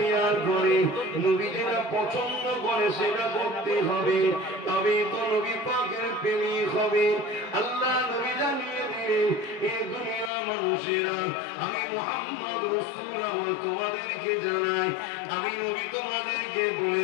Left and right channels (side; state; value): right; drops out; at 10.3 s